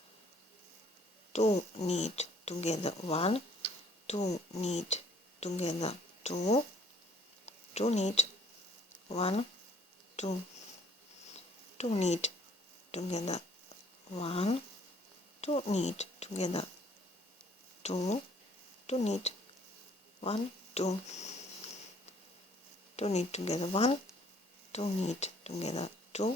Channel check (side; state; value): both; normal; correlation 0.60